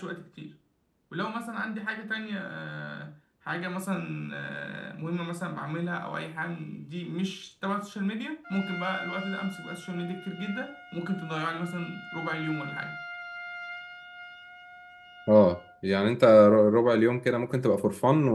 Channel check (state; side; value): identical; both; correlation 1.00